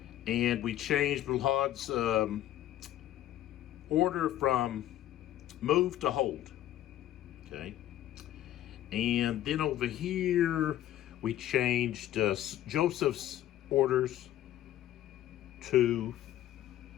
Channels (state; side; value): quieter; right; 12.8 dB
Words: And we changed Milhaud's order from move to hold. Okay. And then over here, we changed Joseph's orders to